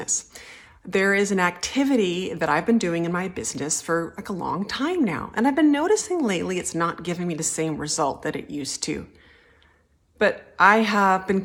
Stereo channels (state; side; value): identical; both; correlation 1.00